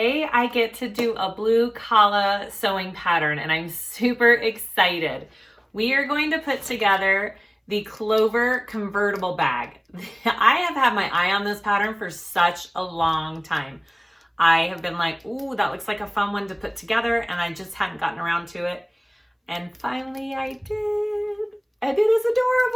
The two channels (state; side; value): identical; both; correlation 1.00